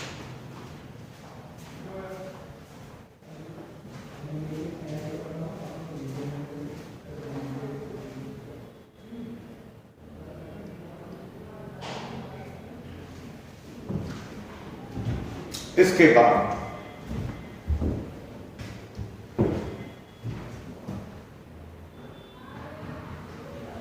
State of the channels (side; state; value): both; identical; correlation 1.00